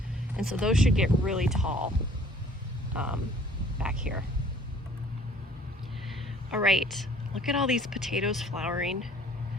and so those should get really tall back here. All right, look at all these potatoes flowering.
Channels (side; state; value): both; normal; correlation 0.55